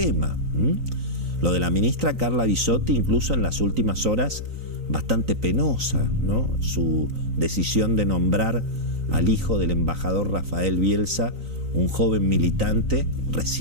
Lo de la ministra Carla Bisotti, incluso en las últimas horas, bastante penosa, ¿no? Su decisión de nombrar al hijo del embajador Rafael Bielsa, un joven militante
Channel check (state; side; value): late; left; 3.9 ms